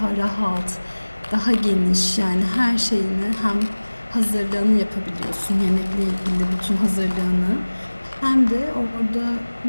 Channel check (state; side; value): inverted; both; correlation -1.00